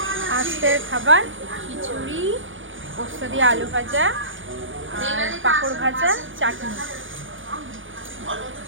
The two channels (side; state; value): left; late; 0.57 ms